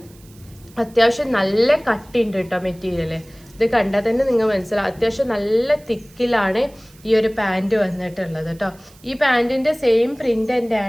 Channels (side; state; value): right; noise; hiss, 27 dB below the sound